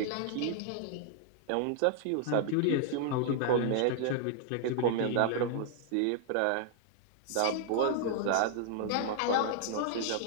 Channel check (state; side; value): different; both; correlation -0.01